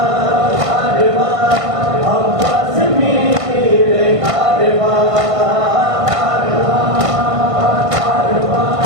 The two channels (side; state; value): left; late; 1.5 ms